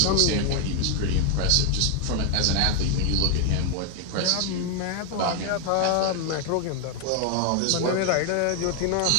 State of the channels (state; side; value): different; both; correlation 0.00